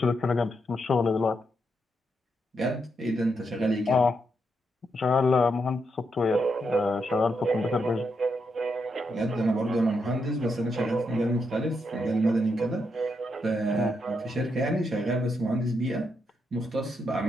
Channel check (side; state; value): both; normal; correlation 0.81